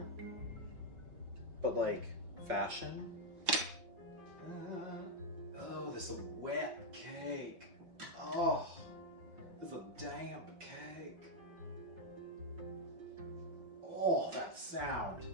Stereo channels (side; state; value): left; late; 5.7 ms